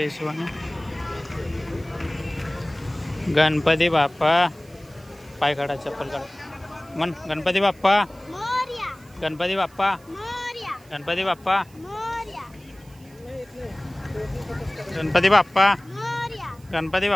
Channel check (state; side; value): noise; right; hiss, 28 dB below the sound